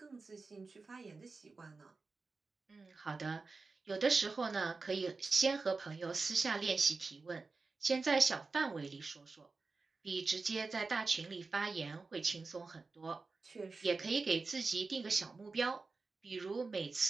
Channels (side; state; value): left; quieter; 4.0 dB